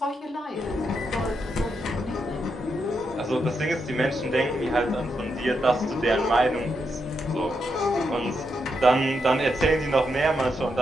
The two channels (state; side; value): normal; both; correlation 0.82